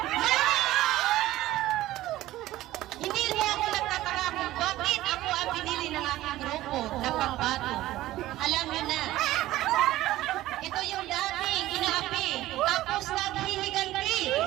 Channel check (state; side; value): quieter; left; 15.7 dB